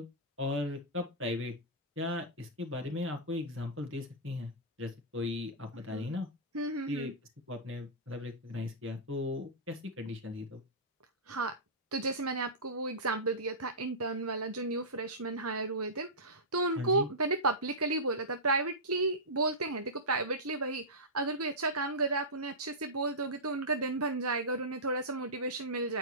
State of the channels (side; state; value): both; normal; correlation -0.17